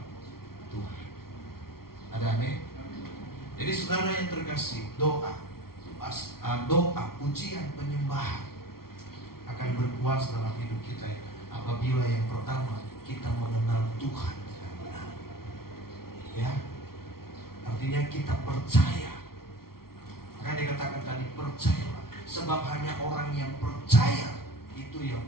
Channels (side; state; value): right; late; 0.94 ms